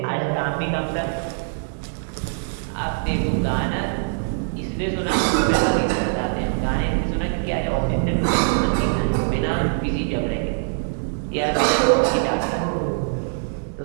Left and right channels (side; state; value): left; silent; digital silence